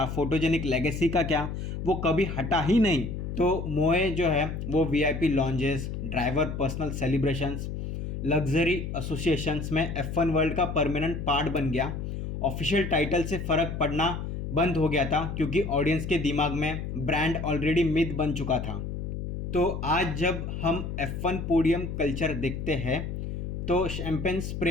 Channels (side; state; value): left; noise; hum, 5 dB below the sound